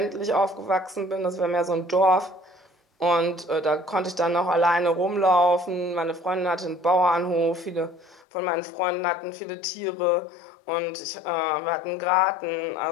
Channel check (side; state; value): right; drops out; at 8.2 s